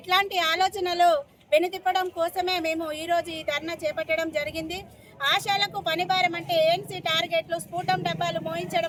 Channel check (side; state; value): both; identical; correlation 1.00